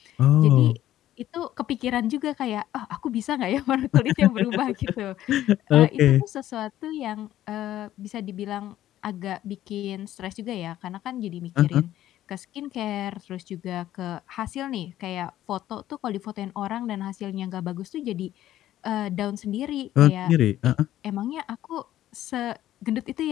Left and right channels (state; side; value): quieter; right; 13.1 dB